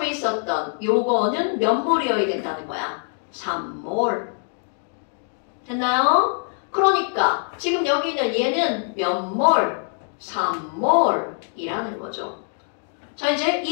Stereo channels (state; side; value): silent; right; 58 dB below the other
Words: 있었던 요거는 몇 몰이어야 된다는 거야? 3몰. 됐나요? 그러니까 지금 여기 있는 얘는 몇 몰? 3몰이라는 거죠. 자, 이제